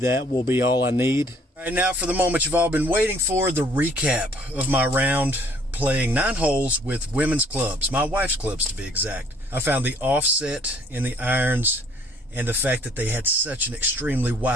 will be all I need. All right, now for the moment you've all been waiting for, the recap of my round playing 9 holes with women's clubs, my wife's clubs to be exact. I found the offset in the irons and the fact that they had such an extremely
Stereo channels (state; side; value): normal; both; correlation 0.60